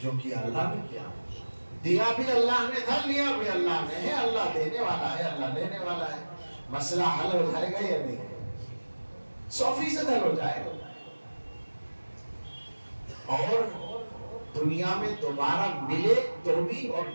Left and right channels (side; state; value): both; inverted; correlation -1.00